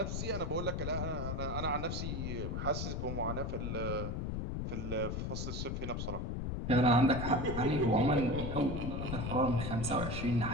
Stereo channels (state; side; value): noise; left; rumble, 2 dB below the sound